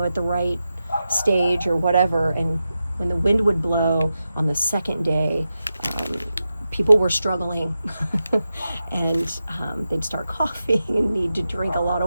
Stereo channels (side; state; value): both; inverted; correlation -0.91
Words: the right stage or whatever, and when the wind would blow on the second day, people were struggling and they'd start coughing and need to drink a lot